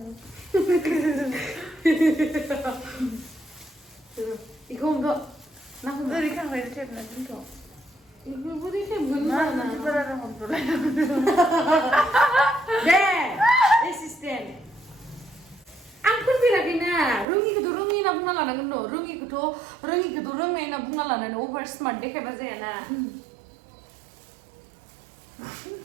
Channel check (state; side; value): drops out; left; at 17.2 s